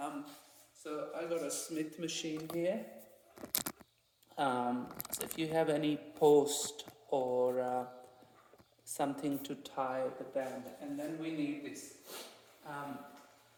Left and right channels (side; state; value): both; identical; correlation 1.00